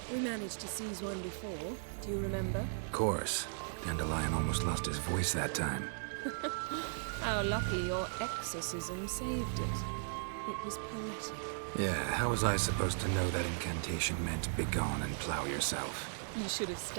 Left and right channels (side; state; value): left; silent; digital silence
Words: We managed to seize one before. Do you remember? Of course. Dandelion almost lost his voice that time. How lucky your exorcism saved it. It was poetic. Yeah, how was I supposed to know that incantation meant begone and plow yourself? You should have